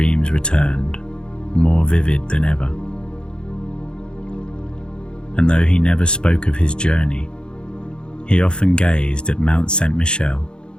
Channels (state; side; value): late; right; 0.051 ms